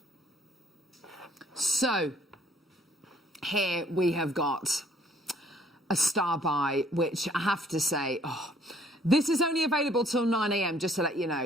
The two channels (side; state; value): both; normal; correlation 0.61